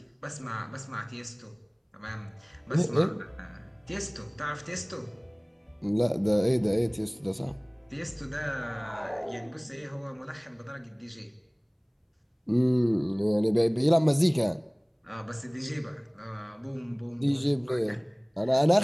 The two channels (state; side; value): identical; both; correlation 1.00